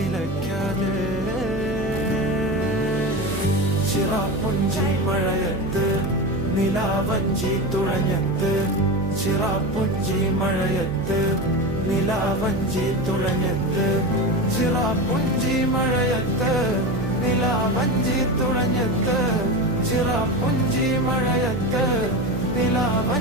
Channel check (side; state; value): right; noise; hum, 7 dB below the sound